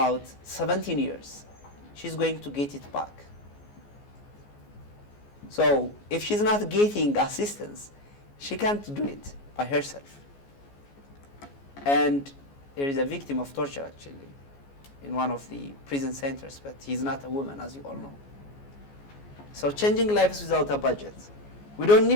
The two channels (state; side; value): late; right; 14 ms